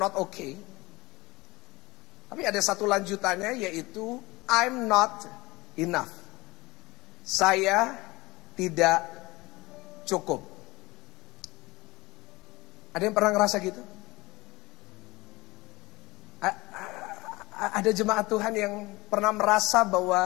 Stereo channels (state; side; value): quieter; right; 21.6 dB